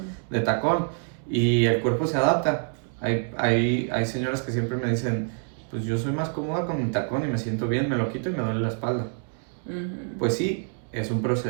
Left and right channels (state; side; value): silent; left; 61 dB below the other